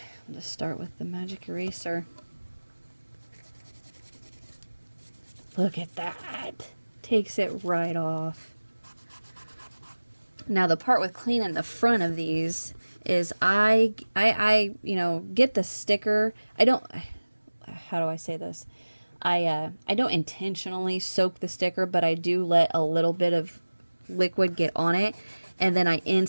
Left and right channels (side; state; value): both; inverted; correlation -1.00